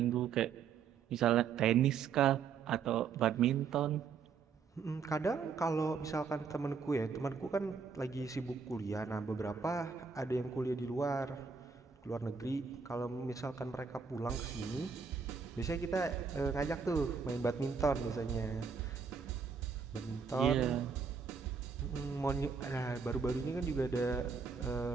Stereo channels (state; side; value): quieter; left; 5.8 dB